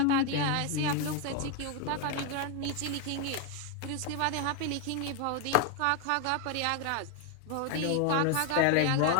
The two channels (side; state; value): both; different; correlation 0.01